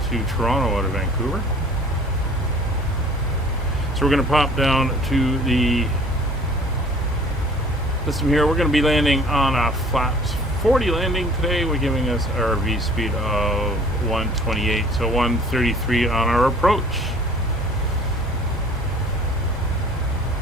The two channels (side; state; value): both; normal; correlation 0.50